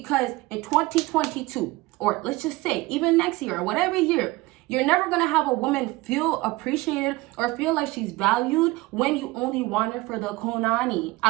in 2022, or let's just say even next year or whatever year, you're never going to have a woman feel appreciated or feel like she's valued when you only want her for the kunani.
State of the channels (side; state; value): left; quieter; 20.9 dB